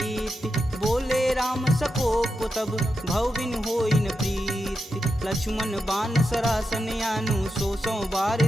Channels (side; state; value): both; normal; correlation 0.87